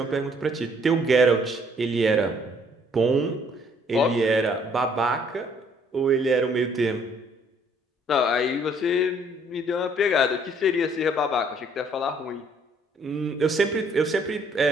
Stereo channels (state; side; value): normal; both; correlation 0.63